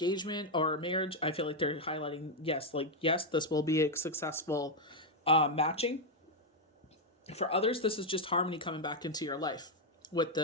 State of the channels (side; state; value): both; normal; correlation 0.01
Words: or a marriage, I feel like they're highlighting, yes, this will be a successful matching. For others, this is just harmony coming back into your life with